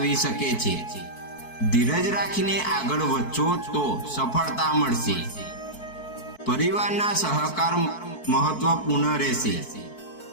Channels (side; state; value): right; late; 4.6 ms